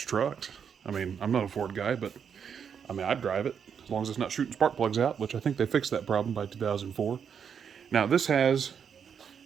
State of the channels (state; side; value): quieter; left; 7.3 dB